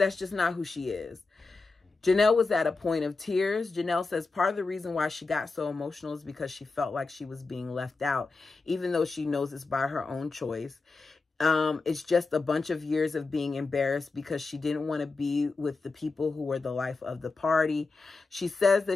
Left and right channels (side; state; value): right; quieter; 3.9 dB